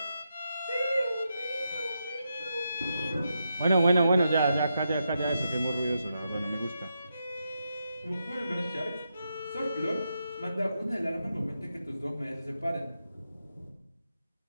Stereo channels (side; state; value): both; inverted; correlation -0.85